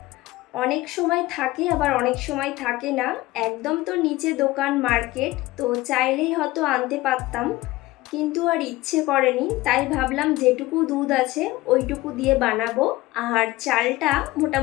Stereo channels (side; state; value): right; quieter; 18.8 dB